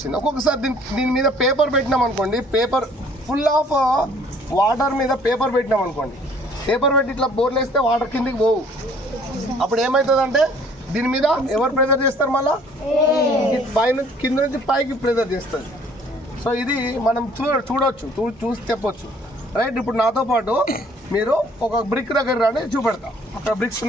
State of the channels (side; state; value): both; normal; correlation 0.57